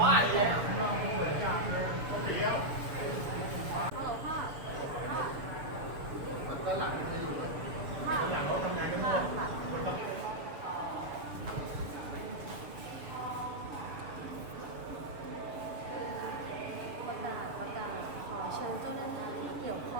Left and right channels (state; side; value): late; left; 6.9 ms